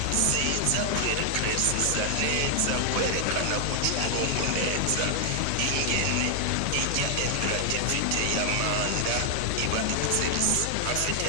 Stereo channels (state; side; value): different; both; correlation 0.00